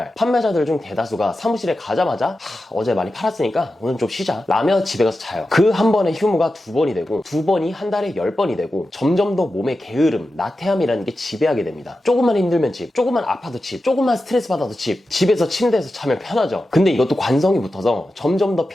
판매자들 중 대다수가 사무실에 가자마자 어제 많이 팔았으니까 오늘 좀 쉬자 라며 집에 가서 자요. 그 한 번의 휴무가 2번이 되고 2번이 한 달에 10번이 되고 점점 더 몸의 게으름, 나태함이라는 게 지배 지배하게 됩니다. 조금만 힘들면 집, 조금만 아파도 집, 조금만 스트레스 받아도 집, 집에서 침대에서 자면 편하죠. 근데 이것도 관성이 붙어서 점점 더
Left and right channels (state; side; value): normal; both; correlation 0.92